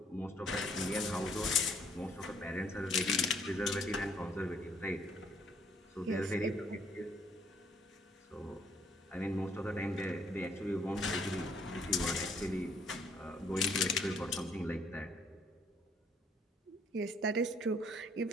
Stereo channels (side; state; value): both; normal; correlation 0.65